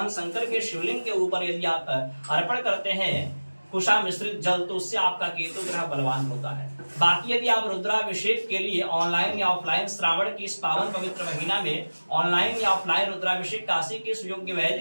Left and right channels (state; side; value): inverted; both; correlation -1.00